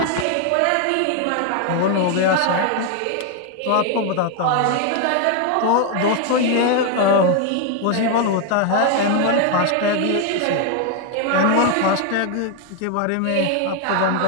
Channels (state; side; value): different; both; correlation 0.01